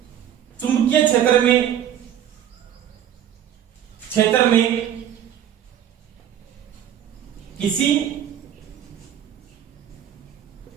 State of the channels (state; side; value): quieter; left; 10.3 dB